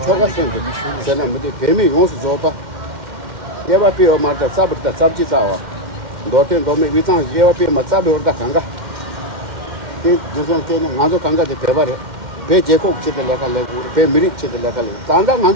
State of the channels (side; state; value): left; late; 2.1 ms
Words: 초가선데. 제가 뭐지 배미 용수 줘봐. 예바 비어 말다 sab다 sab지 싸워. 도텐 도메 위장 예와피 맞잡이 오르다 간가 그 무슨 때는 나도 간가지 배발해 배 제국 치들 내가 내고 배 미리 치들 내가 내 단다